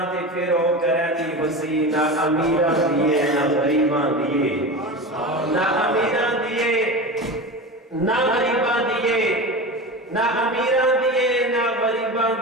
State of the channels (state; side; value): normal; both; correlation 0.27